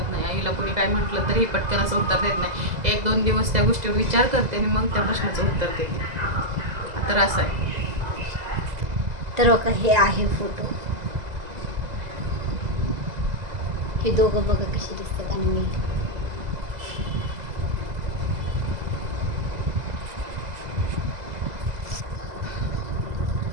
नाही. आईला कोणी काय म्हटलं तरी पटकन असं उत्तर देत नाही. 1-2 दिवस त्या गोष्टीवर विचार करते आणि मग त्या प्रश्नाचं उत्तर देते. तर असं आहे. तर बघा हे आहे फोटो. हे दोघं बघा कशी दिसतात आणि मी.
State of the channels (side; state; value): left; late; 2.0 ms